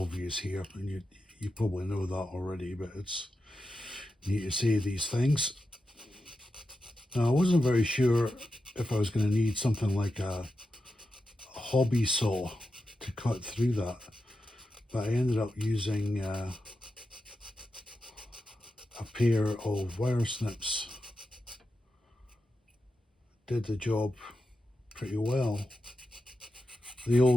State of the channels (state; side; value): normal; both; correlation 0.89